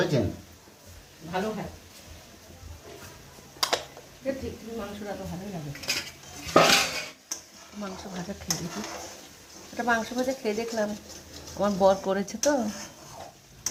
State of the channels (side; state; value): both; identical; correlation 1.00